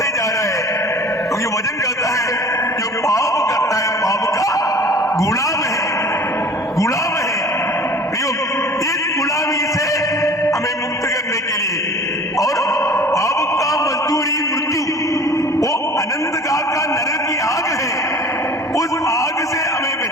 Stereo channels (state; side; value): normal; both; correlation 0.44